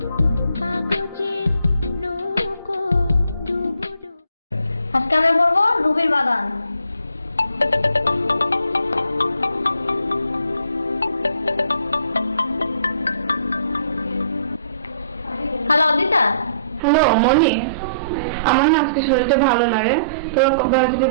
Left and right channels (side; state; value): both; inverted; correlation -0.62